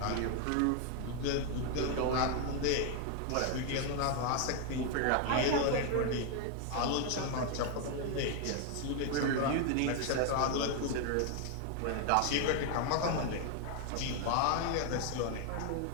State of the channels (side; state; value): both; different; correlation 0.00